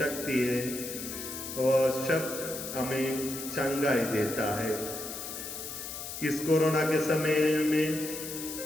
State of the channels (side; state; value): left; noise; hiss, 8 dB below the sound